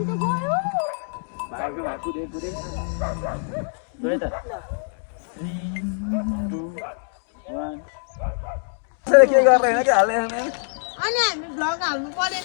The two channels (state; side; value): silent; right; digital silence